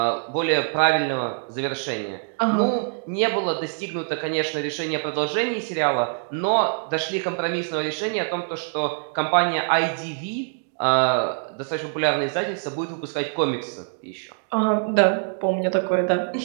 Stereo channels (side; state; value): left; silent; 62 dB below the other